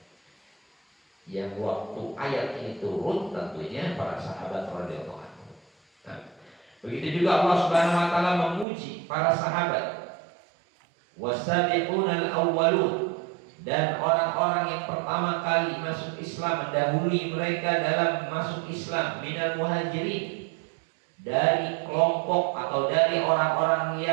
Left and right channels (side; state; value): left; drops out; at 8.7 s